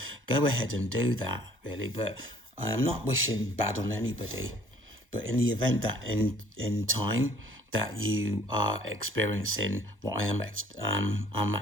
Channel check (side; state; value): both; normal; correlation 0.57